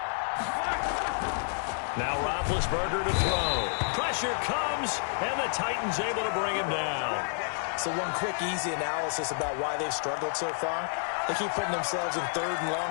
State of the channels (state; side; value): silent; right; 58 dB below the other